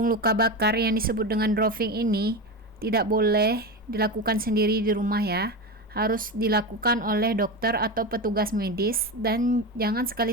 luka bakar yang disebut dengan drawing ini tidak boleh dilakukan sendiri di rumah ya. Harus dilakukan oleh dokter atau petugas medis, dan jangan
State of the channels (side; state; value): both; normal; correlation 0.20